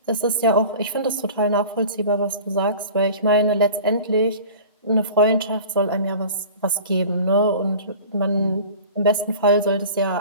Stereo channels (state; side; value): inverted; both; correlation -0.40